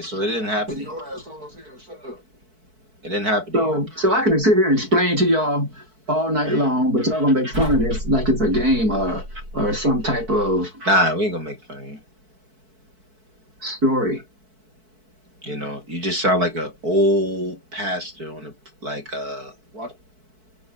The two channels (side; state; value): left; late; 4.6 ms